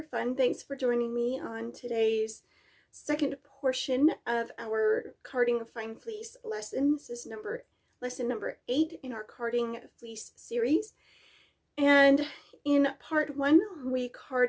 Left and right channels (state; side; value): identical; both; correlation 1.00